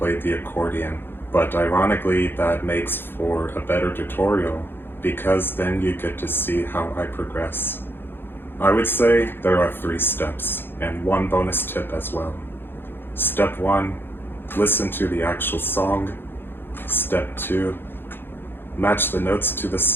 the accordion, but ironically that makes for a better tutorial because then you get to see how I progress. I would say there are 3 steps and 1 bonus tip as well. Step 1, listen to the actual song. Step 2, match the notes to the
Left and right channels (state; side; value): late; right; 0.10 ms